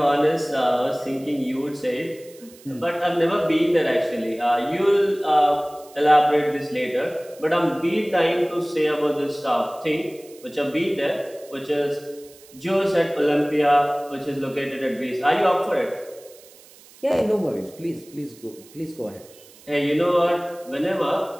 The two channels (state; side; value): noise; right; hiss, 24 dB below the sound